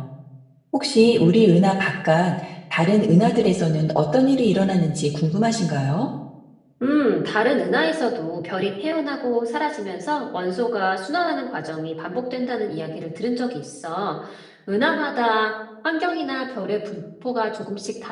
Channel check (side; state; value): both; identical; correlation 1.00